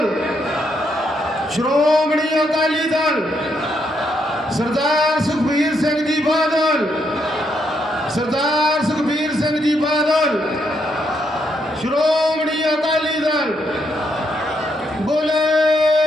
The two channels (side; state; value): both; normal; correlation 0.76